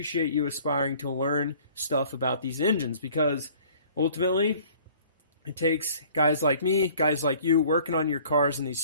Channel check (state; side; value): inverted; both; correlation -0.52